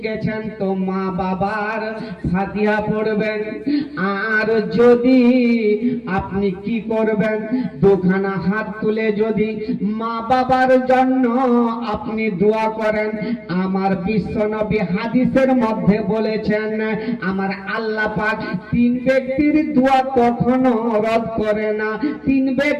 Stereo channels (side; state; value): both; identical; correlation 1.00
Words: তো মা বাবার ফাতিহা পড়বেন, আর যদি আপনি কি করবেন, দুখানা হাত তুলে যদি মা বাবার জন্য আপনি দোয়া করেন। আমার বিশ্বনবী হাদিসের মধ্যে বলেছেন, আমার আল্লাহ পাক তিন ব্যক্তির দোয়া কখনো রদ করে না। তিন